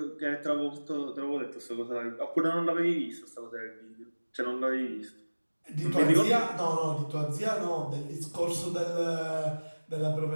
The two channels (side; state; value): both; inverted; correlation -1.00